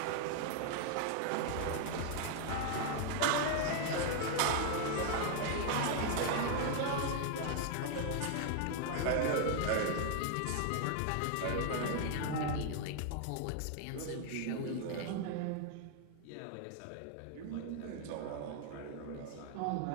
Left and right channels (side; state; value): both; different; correlation 0.00